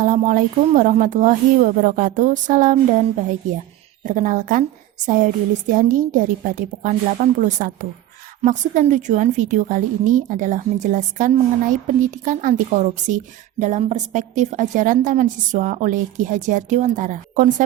warahmatullahi wabarakatuh. Salam dan bahagia. Perkenalkan, saya Dwi Listiandi dari Padepokan 81. Maksud dan tujuan video kali ini adalah menjelaskan mengenai pendidikan anti korupsi dalam perspektif ajaran Taman Siswa oleh Ki Hajar Dewantara.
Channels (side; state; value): left; quieter; 13.9 dB